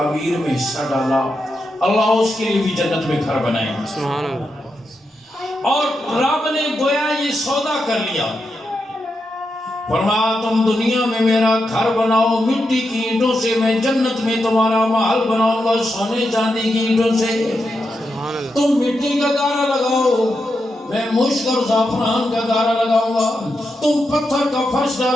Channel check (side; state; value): both; normal; correlation 0.86